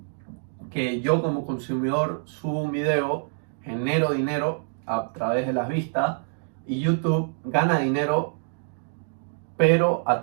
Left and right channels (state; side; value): silent; left; digital silence